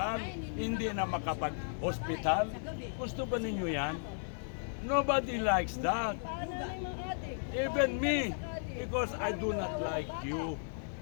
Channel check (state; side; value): silent; right; digital silence